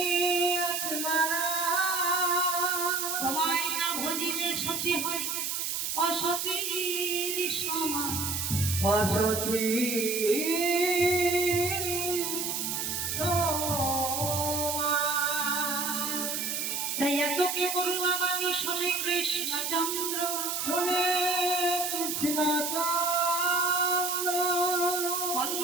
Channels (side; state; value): right; noise; hiss, 1 dB below the sound